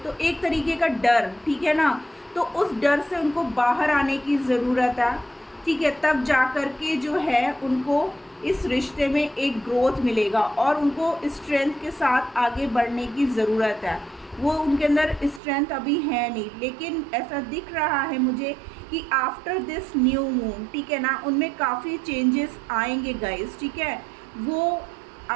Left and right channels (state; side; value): drops out; left; at 15.4 s